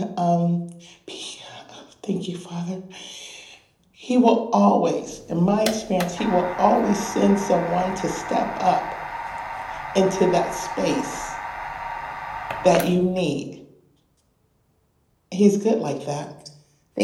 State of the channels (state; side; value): identical; both; correlation 1.00